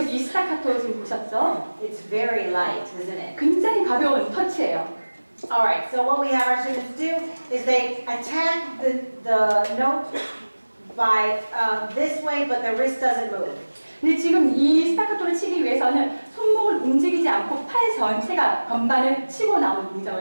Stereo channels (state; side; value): inverted; both; correlation -1.00